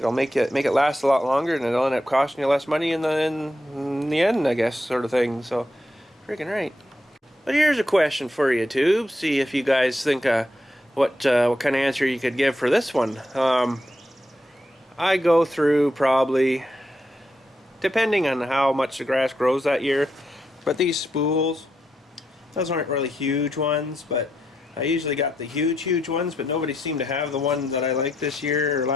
make it last a lot longer, and it'll end up costing you less money in the end, I guess, sort of thing. So, freaking right. But here's a question for you, too. See if you guys think what kind of answer you could give for this one. I go through probably, depending on how much the grass grows that year, but these spools, those aren't really huge ones, but I usually got the huge ones, but nobody seemed to have the one that I like this year or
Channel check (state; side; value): normal; both; correlation 0.82